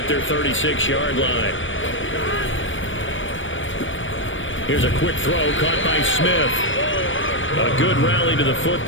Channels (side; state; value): right; late; 0.56 ms